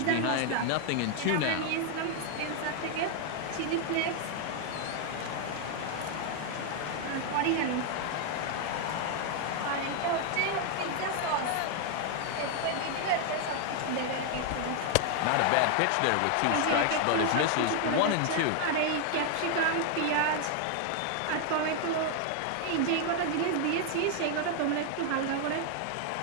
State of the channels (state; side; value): different; both; correlation 0.00